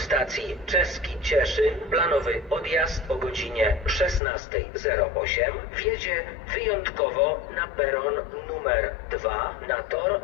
Czeski Cieszyn, planowy odjazd o godzinie 16:08, wjedzie wyjątkowo na peron numer 2 na tor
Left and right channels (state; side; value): drops out; right; at 4.2 s